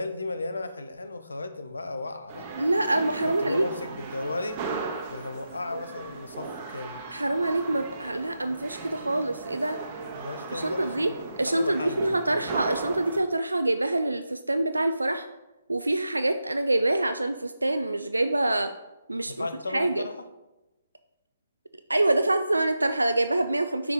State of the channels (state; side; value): inverted; both; correlation -0.90